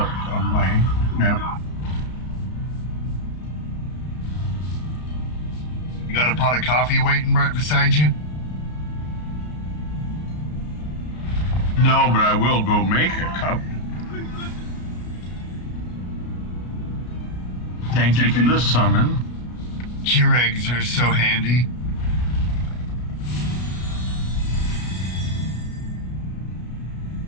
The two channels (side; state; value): right; late; 33 ms